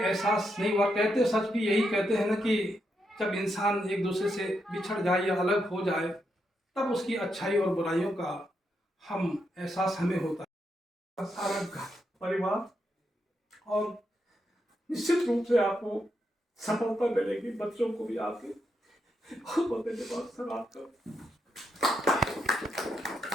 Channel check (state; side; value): normal; both; correlation 0.82